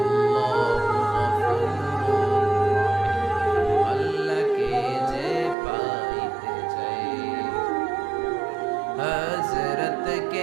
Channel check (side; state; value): left; drops out; at 5.6 s